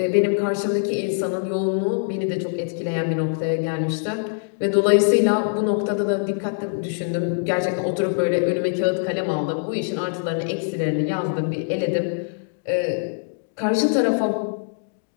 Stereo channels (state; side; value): silent; right; digital silence